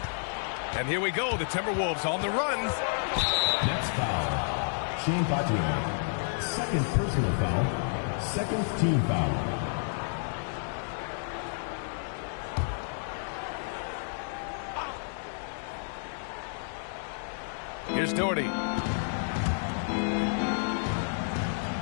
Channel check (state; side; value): silent; right; digital silence